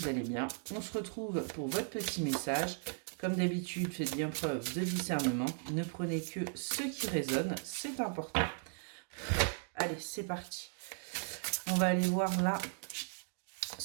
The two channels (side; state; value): left; silent; 53 dB below the other